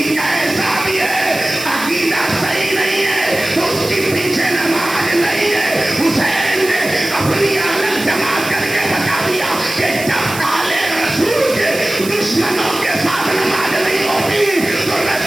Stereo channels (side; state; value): right; noise; hiss, 10 dB below the sound